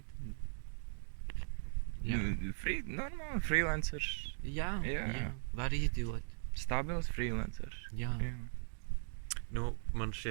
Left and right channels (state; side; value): silent; left; digital silence